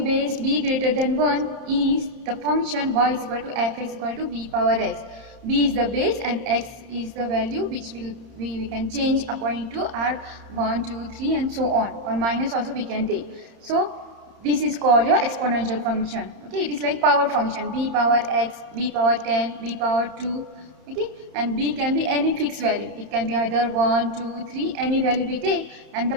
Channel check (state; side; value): late; left; 31 ms